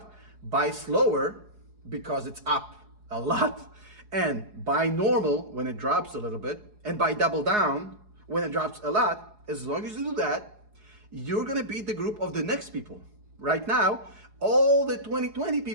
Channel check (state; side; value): late; left; 4.8 ms